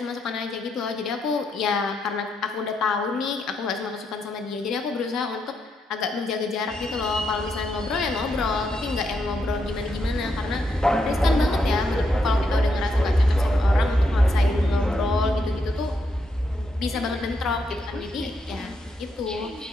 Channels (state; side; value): normal; both; correlation 0.80